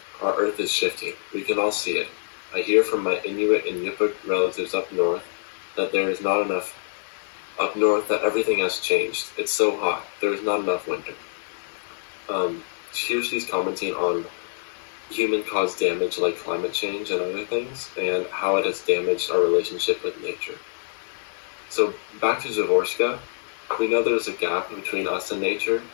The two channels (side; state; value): right; silent; digital silence